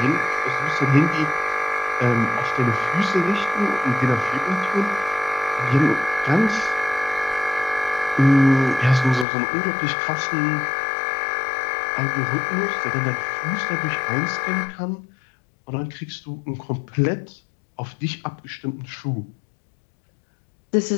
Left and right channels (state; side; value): drops out; right; at 9.2 s